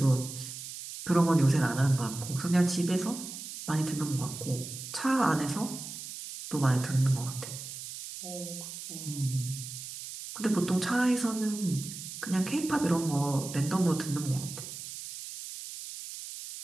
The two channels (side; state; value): right; noise; hiss, 10 dB below the sound